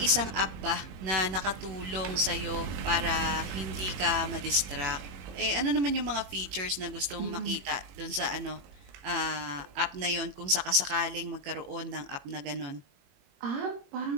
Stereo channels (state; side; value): late; left; 21 ms